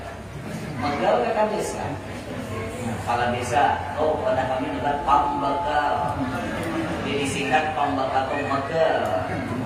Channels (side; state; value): both; identical; correlation 1.00